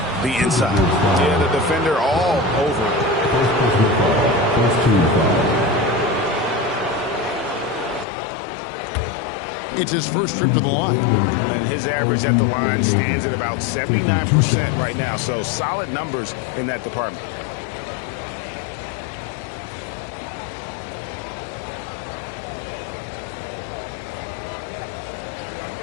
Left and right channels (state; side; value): drops out; right; at 8.1 s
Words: the inside. Yeah, the defender all over it. It's his first trip to the line. And his average at the line stands at about 79% right now. So solid numbers in that department.